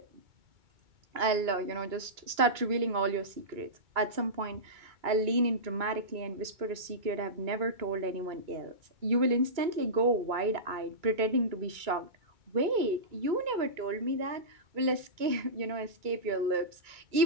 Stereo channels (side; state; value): left; late; 2.3 ms